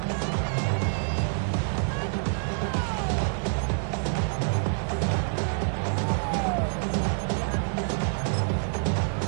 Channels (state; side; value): silent; left; 55 dB below the other